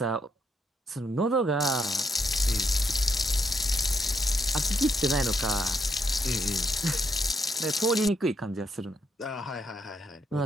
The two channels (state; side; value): normal; both; correlation 0.76